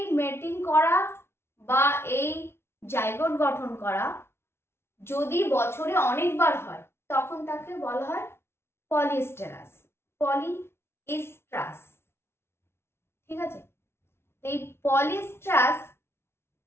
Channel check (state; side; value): late; right; 0.12 ms